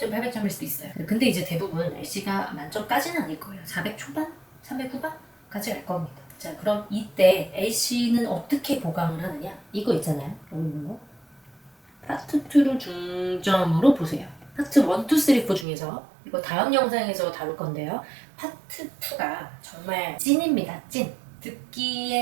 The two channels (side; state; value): left; drops out; at 15.7 s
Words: 800점일 수도 있어요. 근데 이제 대부분 LC가 만점까지는 아닐 거예요. 400 초반? 300 후반까지 갈 겁니다. 자, 그럼 이때 LC는 어떻게 보강을 하느냐? 이거 있잖아요. 이거 파트 2를 중점으로 보세요. 파트 1, 2, 3, 4 중에서 이거 다음 영상에서 다룰 건데요. 파트 2가 정말 찐입니다. 찐.